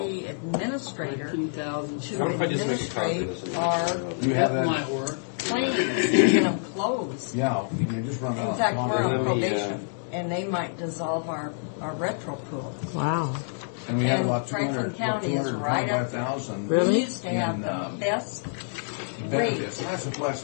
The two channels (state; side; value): silent; right; digital silence